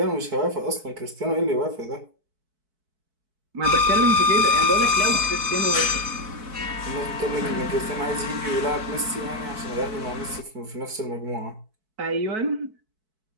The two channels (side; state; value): left; late; 4.6 ms